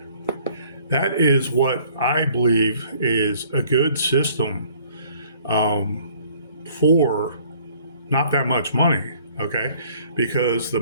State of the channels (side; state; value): both; inverted; correlation -0.57